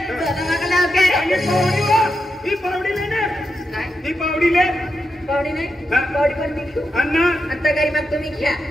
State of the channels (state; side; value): normal; both; correlation 0.86